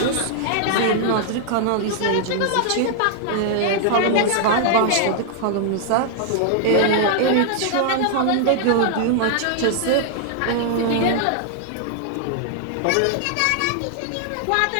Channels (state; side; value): different; both; correlation -0.01